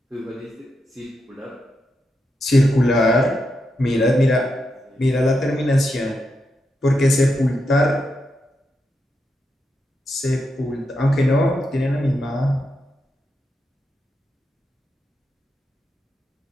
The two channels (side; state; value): both; normal; correlation 0.85